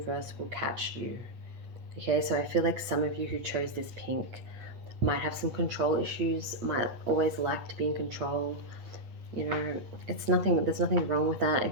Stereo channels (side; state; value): left; late; 8.7 ms